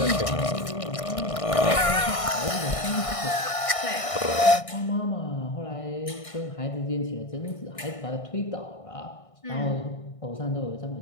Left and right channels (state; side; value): late; right; 1.6 ms